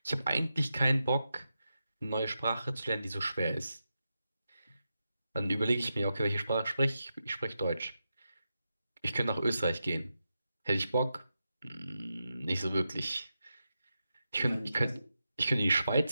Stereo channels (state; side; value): inverted; both; correlation -0.89